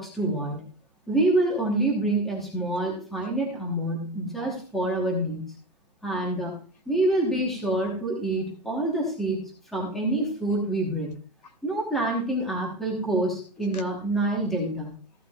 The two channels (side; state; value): both; normal; correlation 0.27